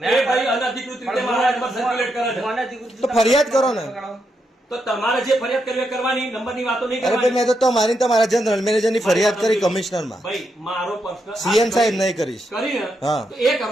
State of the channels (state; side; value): normal; both; correlation 0.82